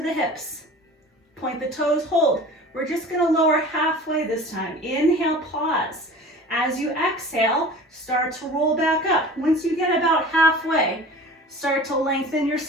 the hips. Point the toes, hold. We're just going to lower halfway this time. Inhale, pause. As you exhale, start to roll back up. Once you get about halfway, start to lengthen your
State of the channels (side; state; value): both; normal; correlation 0.40